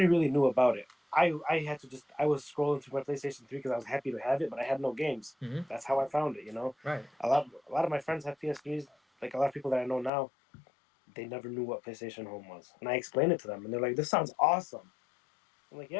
really knew about it. I had to I was scrolling through my PlayStation 3 because I was happy to have it, but I had no games. Mm-hmm. That's how I found it. Right. A lot of my friends have PS3s. Like a lot of people that I know now, they never knew what PlayStation Home was, and I explained it to them, and they're like, "This sounds awesome." I'm like,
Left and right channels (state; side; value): drops out; right; at 10.1 s